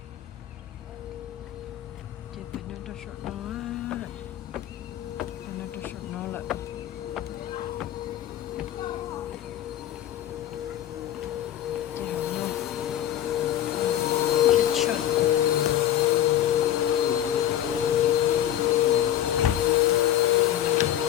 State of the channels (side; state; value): right; quieter; 11.9 dB